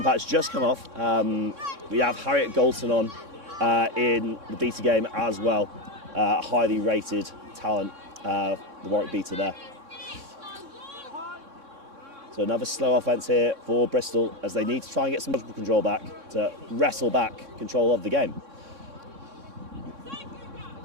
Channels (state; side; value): late; left; 3.6 ms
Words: just come off. We have Harriet Goldson on in the beater game as well. Highly rated talent, the Warwick beater there. So another slow offence here for Bristol as they need to try and get some control back to wrestle back control of the game.